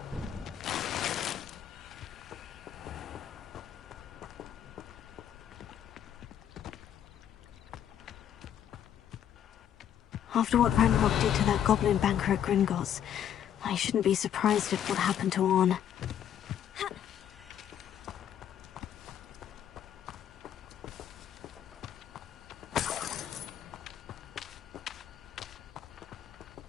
After what Ranrock did to that goblin banker at Gringotts, I shouldn't be surprised at what happened to Orn.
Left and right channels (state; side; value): quieter; right; 9.8 dB